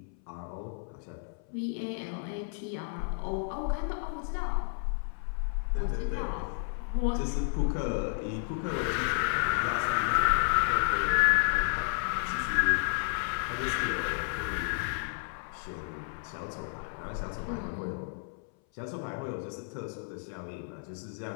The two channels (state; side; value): silent; right; 57 dB below the other